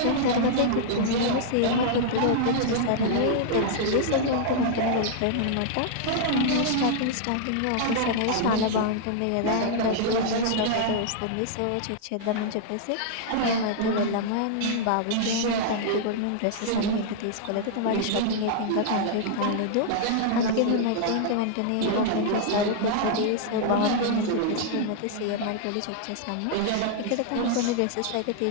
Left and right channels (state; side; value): different; both; correlation -0.01